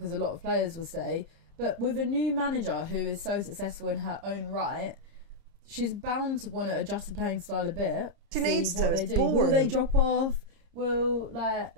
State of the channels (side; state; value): left; late; 30 ms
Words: a lot of players will stay. But with a new manager who is so successful in her own right, she's bound to want to adjust the playing style a bit. She see needs what to. they It's do. boring. Will they drop off?